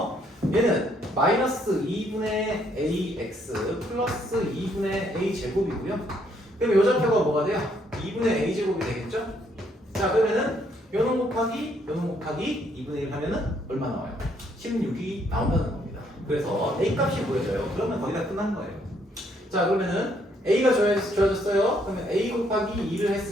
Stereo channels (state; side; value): normal; both; correlation 0.70